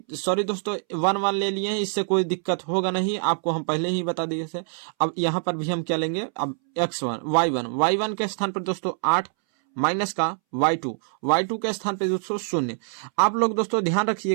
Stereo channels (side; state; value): left; silent; 62 dB below the other